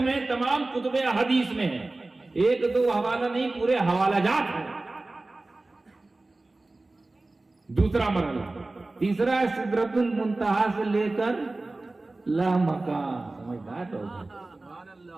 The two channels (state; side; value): quieter; left; 3.1 dB